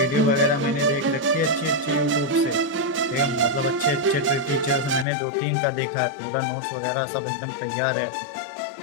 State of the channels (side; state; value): right; drops out; at 5.1 s